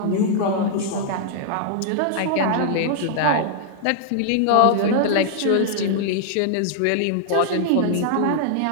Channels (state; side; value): different; both; correlation -0.01